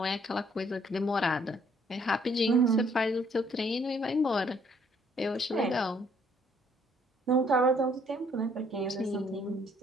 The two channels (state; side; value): normal; both; correlation 0.64